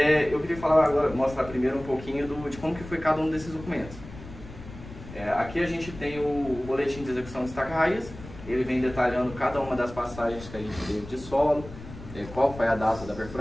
eu queria falar agora, mostrar primeiro um pouquinho de como que foi cada um desses documentos. Aqui a gente tem o boletim de execução de estaca raiz. Ele vem detalhando cada uma das passagens que a gente teve de solo, qual foi a data da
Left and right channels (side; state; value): left; noise; rumble, 15 dB below the sound